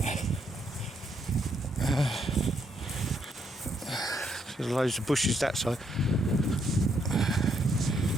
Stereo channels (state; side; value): normal; both; correlation 0.74